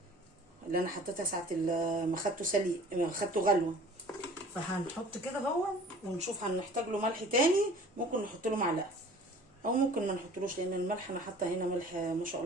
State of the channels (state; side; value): normal; both; correlation 0.47